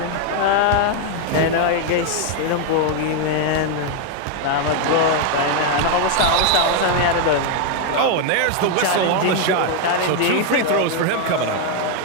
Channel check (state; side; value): different; both; correlation 0.00